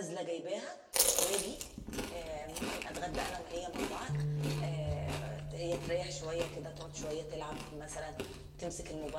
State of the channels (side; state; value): both; identical; correlation 1.00